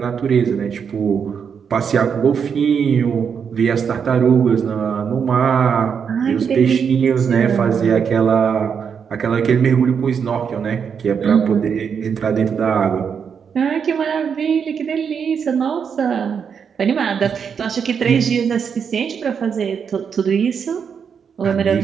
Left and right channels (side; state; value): left; quieter; 6.9 dB